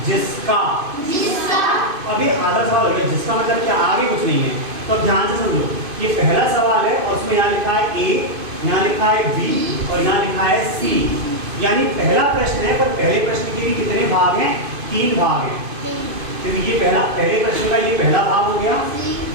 जिसका। अभी आधा सवाल हो गया, जिसका मतलब क्या, आगे कुछ नहीं है। तो अब ध्यान से समझो, ये पहला सवाल है और उसमें यहाँ लिखा है ए, यहाँ लिखा है बी और यहाँ लिखा है सी। यानी पहला प्रश्न है, पर पहले प्रश्न के भी कितने भाग हैं? 3 भाग हैं। तो ये पहले प्रश्न का ये पहला भाग हो गया,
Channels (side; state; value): left; late; 2.5 ms